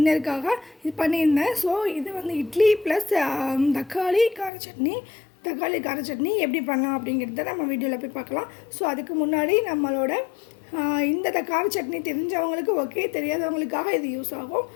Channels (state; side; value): drops out; right; at 4.5 s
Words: இது பண்ணியிருந்தேன். ஸோ இது வந்து இட்லி ப்ளஸ் தக்காளி கார சட்னி எப்படி பண்ணலாம் அப்படிங்கிறத நம்ம வீடியோவில் போய் பார்க்கலாம். ஸோ அதுக்கு முன்னாடி நம்மளோட இந்த கார சட்னி தெரிஞ்சவங்களுக்கு ஓகே, தெரியாதவங்களுக்காக இது யூஸ் ஆகும்.